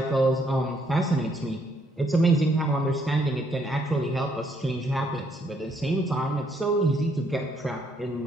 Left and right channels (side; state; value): both; normal; correlation 0.70